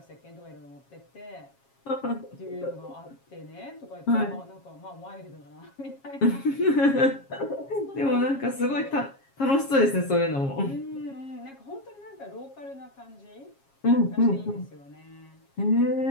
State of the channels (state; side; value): late; right; 7.3 ms